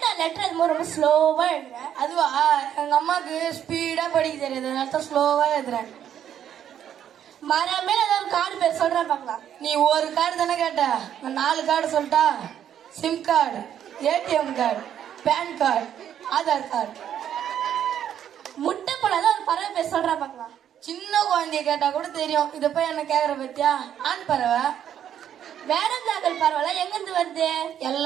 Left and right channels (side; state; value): left; quieter; 9.8 dB